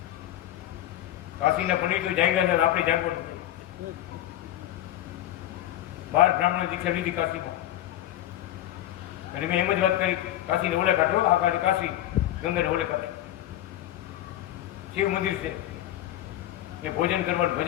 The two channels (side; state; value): right; quieter; 13.5 dB